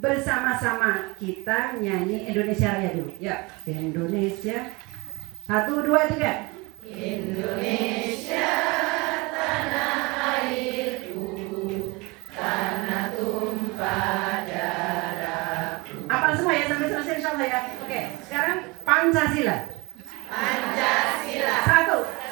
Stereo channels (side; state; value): left; quieter; 25.9 dB